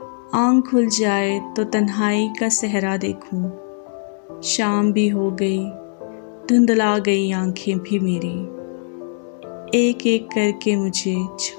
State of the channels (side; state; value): right; silent; digital silence